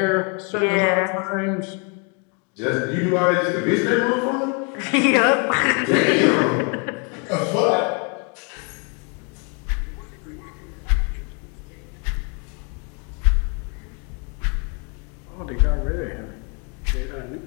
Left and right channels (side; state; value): right; quieter; 35.7 dB